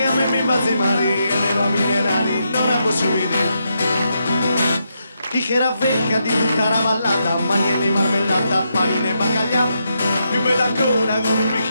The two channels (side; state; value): both; inverted; correlation -0.81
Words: a me mi fa zimari, e le va minerali non la posso vedere. Chi che era vecchia di tutta la vallata, magne di marmellata, panine e baccaglià, più bella ancora con un